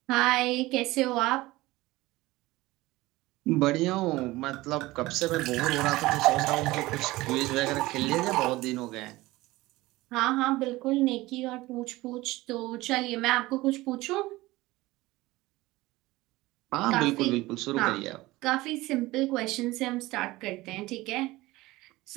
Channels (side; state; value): left; quieter; 19.2 dB